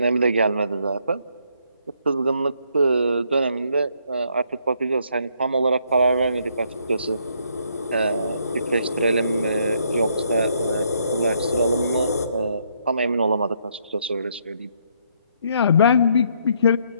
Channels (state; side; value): inverted; both; correlation -0.71